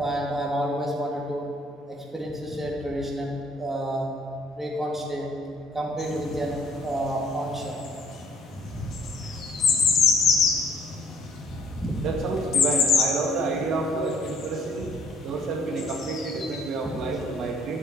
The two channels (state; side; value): normal; both; correlation 0.61